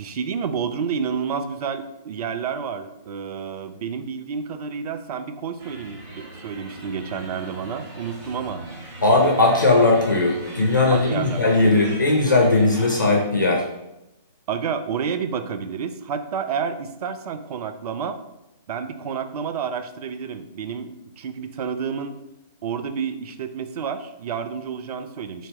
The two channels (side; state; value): both; inverted; correlation -0.43